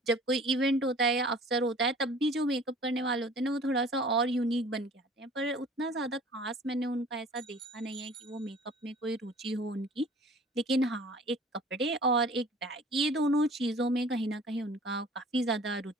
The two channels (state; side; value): normal; both; correlation 0.48